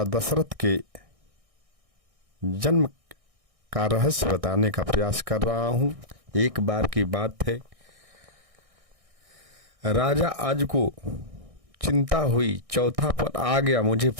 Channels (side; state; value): left; late; 1.6 ms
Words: दशरथ के जन्म का रहस्य बताने का प्रयास कर रहा हूँ। एक बार की बात है, राजा आज को चिंता हुई, चौथा पद आ गया, मुझे